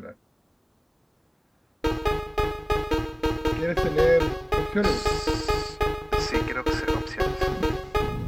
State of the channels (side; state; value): both; identical; correlation 1.00